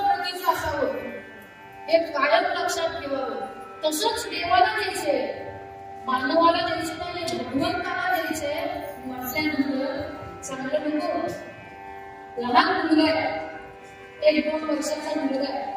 प्रतीचं असावं, हे कायम लक्षात ठेवावं. तसंच देवाला द्यायचे, मानवाला द्यायचे नाही, भगवंताला द्यायचे म्हटल्यानंतर चांगलं नको. लहान मुलगा आहे, 1-2 वर्षाचा मुलगा आहे,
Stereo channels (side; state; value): both; identical; correlation 1.00